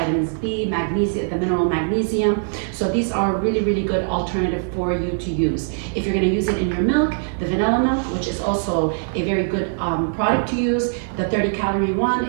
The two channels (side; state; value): left; silent; digital silence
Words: B, magnesium, the mineral magnesium. So these are a really, really good alternative for you to use. If you're going to use it in your milk, the vanilla milk, which is also a very good product to use. The 30-calorie one,